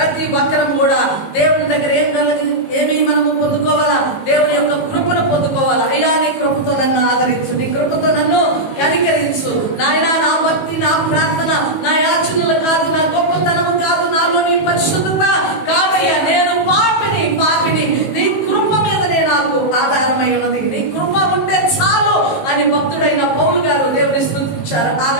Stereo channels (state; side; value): late; right; 19 ms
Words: ఒక్కరం కూడా దేవుని దగ్గర ఏమి మనము పొందుకోవాలా? దేవుని యొక్క కృపను పొందుకోవాలా. అయ్యా నీ కృపతో నన్ను ఆదరించు, నీ కృపతో నన్ను కనికరించు నాయనా. నా భక్తి, నా ప్రార్థన, నా యాచనలు కాదు, నా గొప్పతనము కాదు, నాలో నీ పరిశుద్ధత కాదయ్యా. నేను పాపిని. నీ కృప మీదనే నాకు ఆధారమై ఉన్నది. నీ కృప ఉంటే చాలు అని భక్తుడైన పౌలు గారు దేవుని స్తుతించారు.